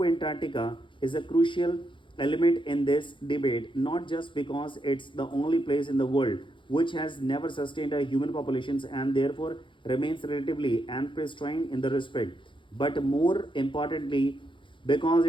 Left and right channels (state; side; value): late; right; 0.24 ms